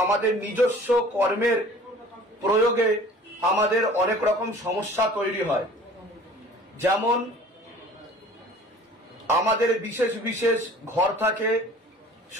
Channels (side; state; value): both; normal; correlation 0.48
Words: আমাদের নিজস্ব কর্মের প্রয়োগে আমাদের অনেক রকম সমস্যা তৈরি হয়। যেমন আমাদের বিশেষ বিশেষ ঘর থাকে,